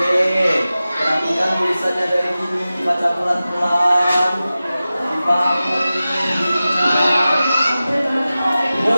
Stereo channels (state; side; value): inverted; both; correlation -0.95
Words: perhatikan tulisannya dari sini, baca pelan-pelan. Dipahami, diingat.